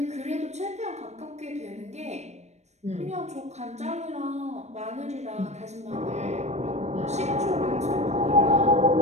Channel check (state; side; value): late; left; 0.32 ms